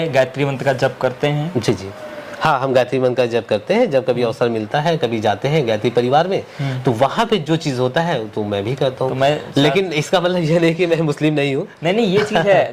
गायत्री मंत्र का जप करते हैं? जी जी, हाँ, हम गायत्री मंत्र का जप करते हैं। जब कभी अवसर मिलता है, कभी जाते हैं गायत्री परिवार में, तो वहाँ पे जो चीज होता है तो मैं भी करता हूँ। लेकिन इसका मतलब ये नहीं कि मैं मुस्लिम नहीं हूँ। नहीं, ये चीज है।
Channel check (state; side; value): identical; both; correlation 1.00